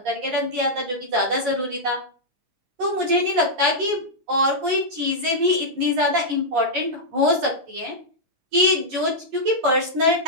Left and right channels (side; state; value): left; late; 12 ms